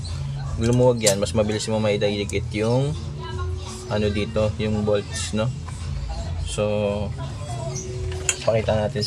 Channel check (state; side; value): identical; both; correlation 1.00